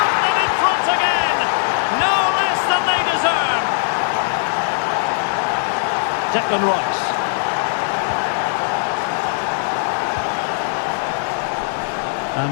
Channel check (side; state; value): right; silent; digital silence